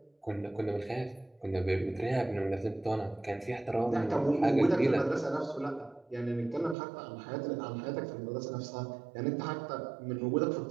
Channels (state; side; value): drops out; left; at 6.8 s